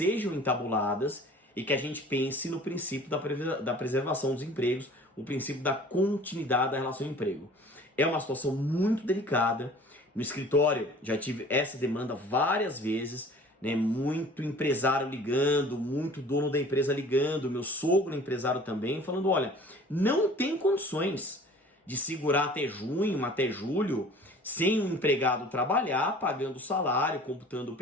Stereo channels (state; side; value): normal; both; correlation 0.47